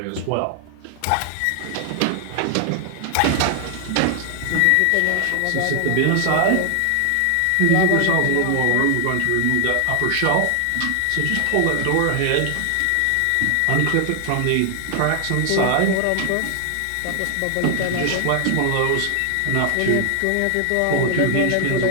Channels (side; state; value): both; different; correlation 0.00